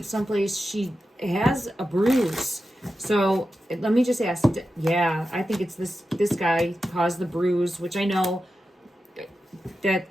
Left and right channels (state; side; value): normal; both; correlation 0.91